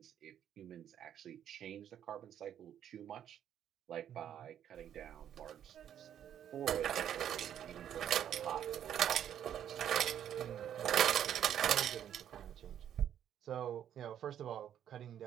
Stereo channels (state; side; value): quieter; left; 10.0 dB